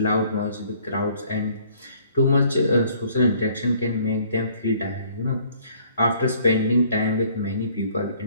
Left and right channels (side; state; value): both; inverted; correlation -0.59